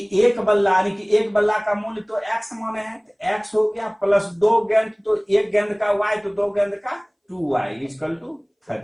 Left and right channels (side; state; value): both; identical; correlation 1.00